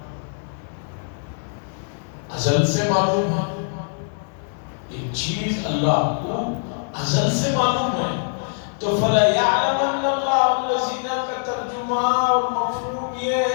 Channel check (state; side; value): silent; right; 59 dB below the other